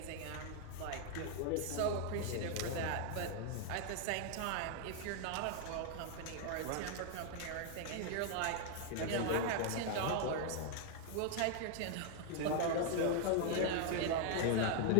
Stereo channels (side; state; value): both; different; correlation 0.00